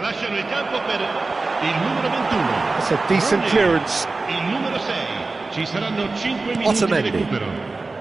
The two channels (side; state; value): left; quieter; 3.6 dB